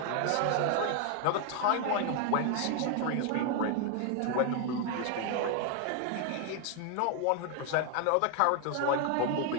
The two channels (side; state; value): both; different; correlation 0.00